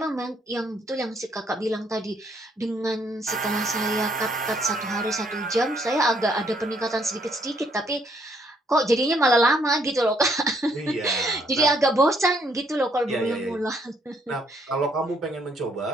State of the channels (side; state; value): both; normal; correlation 0.69